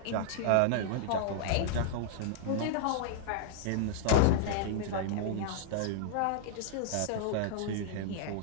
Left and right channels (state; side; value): different; both; correlation -0.01